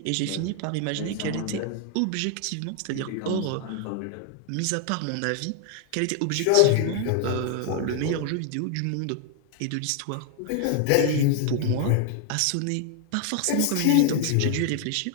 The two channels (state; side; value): different; both; correlation 0.00